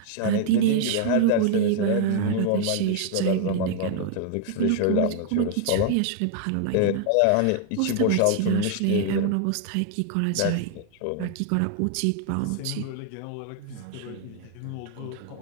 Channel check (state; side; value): different; both; correlation 0.00